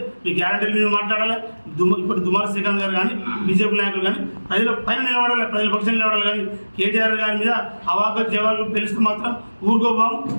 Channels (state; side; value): inverted; both; correlation -1.00